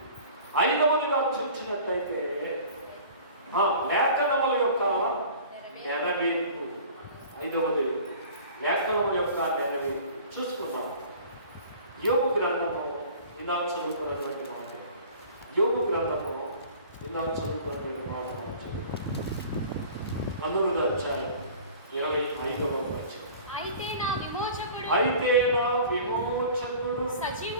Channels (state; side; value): inverted; both; correlation -0.44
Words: ఐదవదిగా చూసినట్లయితే లేఖనముల యొక్క నెరవేర్పు. ఐదవది లేఖనముల యొక్క నెరవేర్పు చూసుకుందాం. యోబు గ్రంథము ఇందాక చదువుతున్నటువంటి మాట. యోబు గ్రంథము ఇందాక చదువుతున్నటువంటి మాట మనం చదువుతాం. 9వ అధ్యాయం 25వ వచనం. అయితే నా విమోచకుడు